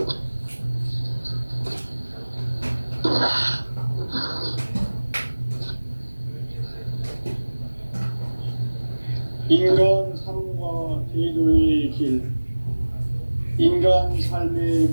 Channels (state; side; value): inverted; both; correlation -1.00